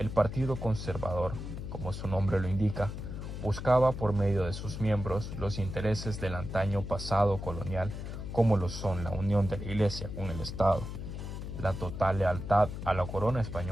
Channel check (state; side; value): noise; left; hum, 7 dB below the sound